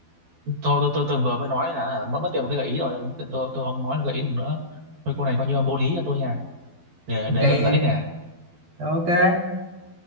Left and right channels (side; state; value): left; late; 12 ms